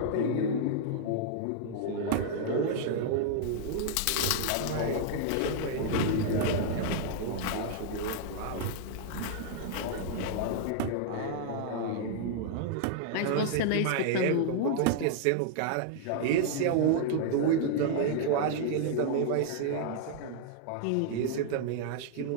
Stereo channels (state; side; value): different; both; correlation -0.01